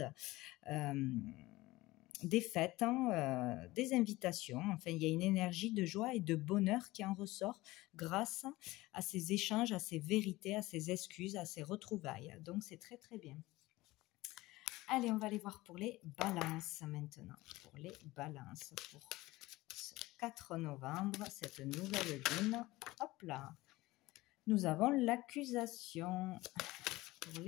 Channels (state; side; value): quieter; right; 19.2 dB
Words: Des fêtes, des invitations. Enfin, il y a une énergie de joie et de bonheur qui en ressort grâce à ces échanges, à ces vérités, à ces excuses, à ces retrouvailles. Donc, c'est très, très bien. Allez, on va aller voir pour les balances maintenant. Pour les balances, pour ce 4 novembre, cette nouvelle lune. Hop là. Nous avons l'accusation pour